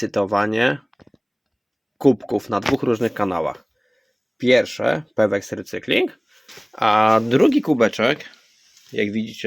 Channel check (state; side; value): identical; both; correlation 1.00